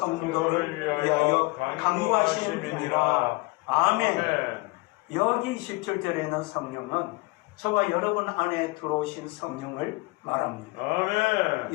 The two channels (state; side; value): quieter; right; 25.1 dB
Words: 위하여 강구하심이니라. 아멘. 여기 17절에는 성령은 저와 여러분 안에 들어오신 성령을 말합니다. 아멘.